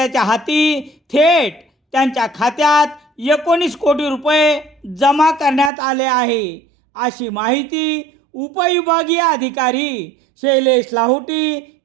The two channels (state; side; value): drops out; left; at 5.7 s